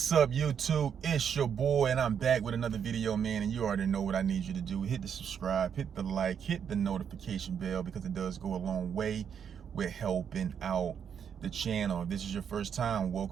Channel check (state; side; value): quieter; left; 7.8 dB